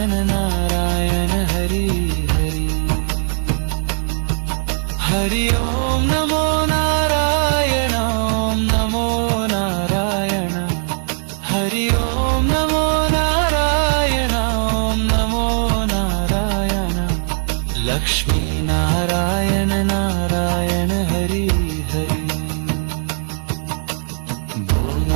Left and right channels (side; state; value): left; silent; 61 dB below the other